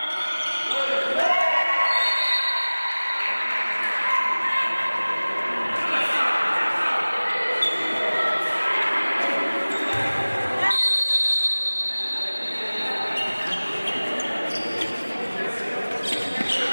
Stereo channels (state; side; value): inverted; both; correlation -1.00